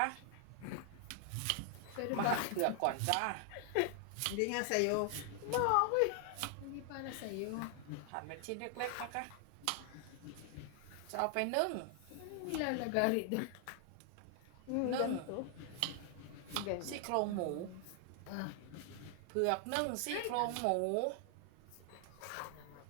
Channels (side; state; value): both; different; correlation 0.00